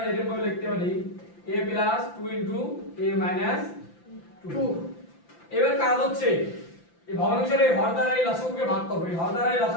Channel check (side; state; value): right; late; 5.9 ms